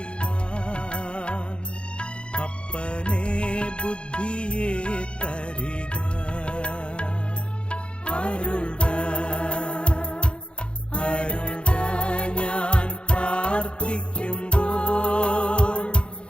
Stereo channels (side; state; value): right; late; 0.057 ms